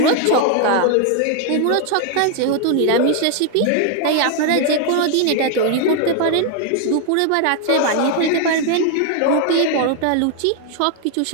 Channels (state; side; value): different; both; correlation 0.00